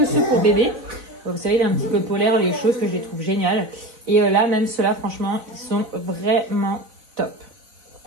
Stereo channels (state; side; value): late; left; 4.0 ms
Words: ceux pour bébé. Vous savez, il est un petit peu polaire, les choses que je les trouve géniales. Et là, même ceux-là, franchement, ils sont vraiment top.